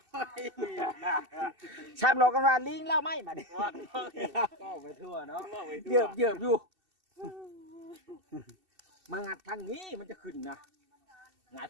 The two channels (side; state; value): left; late; 2.7 ms